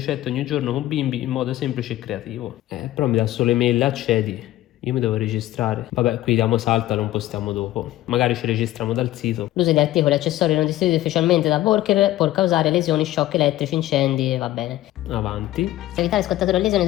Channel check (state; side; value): quieter; right; 15.2 dB